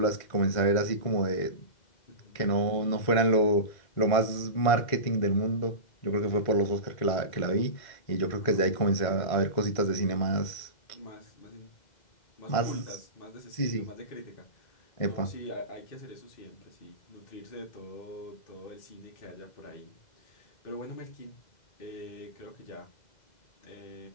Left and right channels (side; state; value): right; late; 1.5 ms